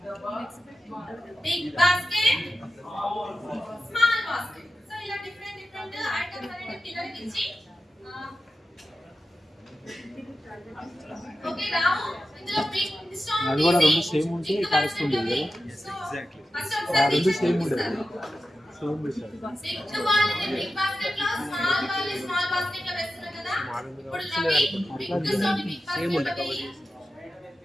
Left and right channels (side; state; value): both; normal; correlation 0.92